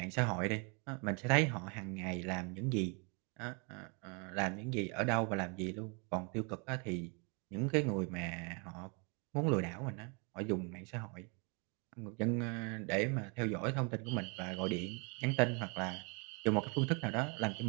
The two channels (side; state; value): left; quieter; 33.9 dB